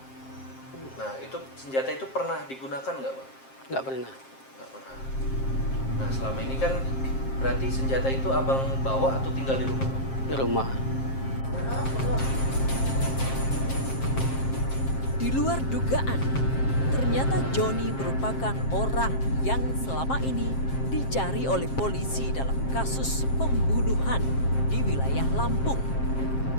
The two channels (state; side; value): late; right; 7.5 ms